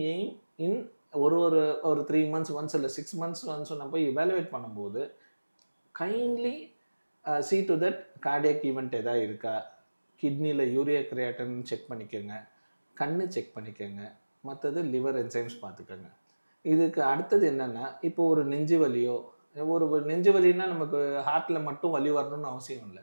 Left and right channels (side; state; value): both; inverted; correlation -1.00